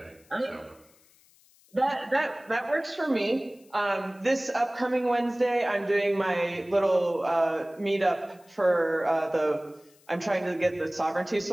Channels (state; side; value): noise; left; hiss, 30 dB below the sound